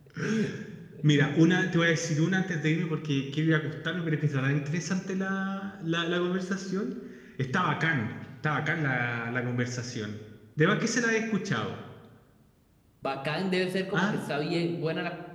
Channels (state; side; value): identical; both; correlation 1.00